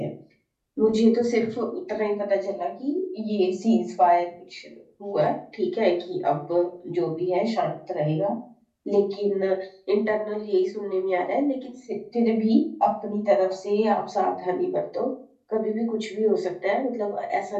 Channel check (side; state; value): both; identical; correlation 1.00